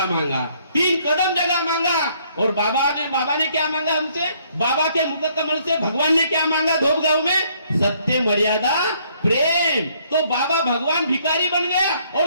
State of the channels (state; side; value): inverted; both; correlation -0.66